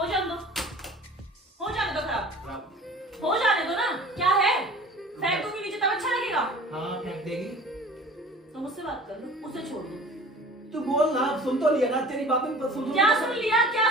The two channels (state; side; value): normal; both; correlation 0.44